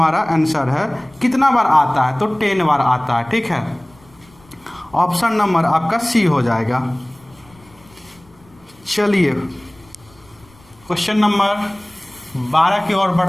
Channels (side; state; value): left; noise; rumble, 28 dB below the sound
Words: आंसर है। कितना बार आता है? तो 10 बार आता है। ठीक है, ऑप्शन नंबर आपका सी हो जाएगा। चलिए, क्वेश्चन नंबर 12 की ओर